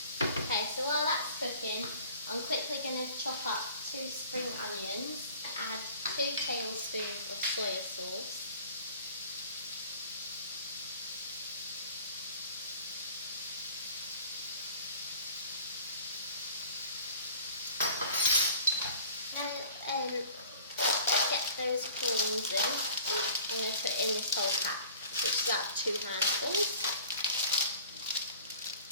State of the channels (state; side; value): inverted; both; correlation -0.47